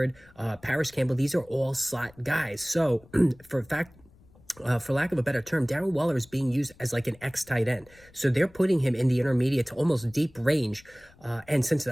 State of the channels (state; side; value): noise; left; rumble, 27 dB below the sound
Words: Paris Campbell. These are all slot guys. So for lack of a better term, Darren Waller is being used as like an X tight end. So they're putting him in the intermediate to almost deep range. And since